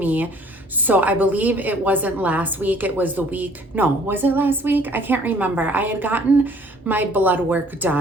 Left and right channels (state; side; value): normal; both; correlation 0.57